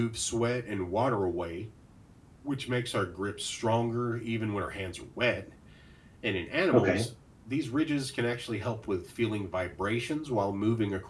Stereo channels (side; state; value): both; identical; correlation 1.00